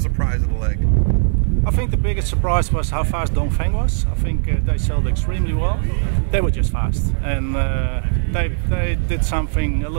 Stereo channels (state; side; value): silent; left; 61 dB below the other